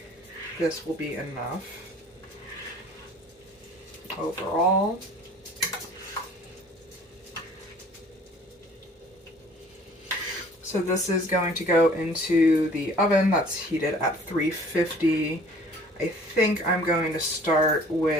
this will be enough overall. So this is going to go into the oven that's heated at 350. I think I'm going to start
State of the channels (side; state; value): both; normal; correlation 0.52